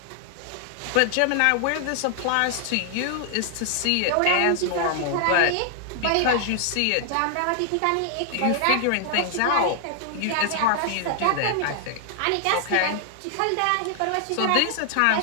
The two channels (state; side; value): different; both; correlation 0.00